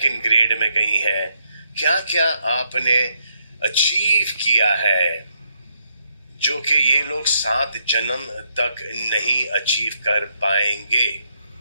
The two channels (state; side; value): inverted; both; correlation -0.75